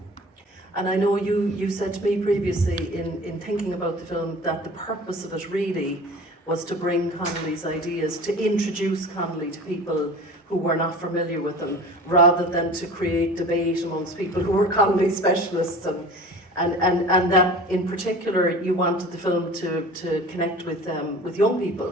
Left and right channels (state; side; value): normal; both; correlation 0.40